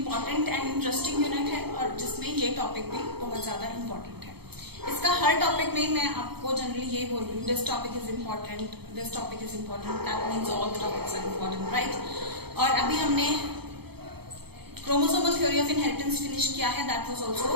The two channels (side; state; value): left; late; 0.97 ms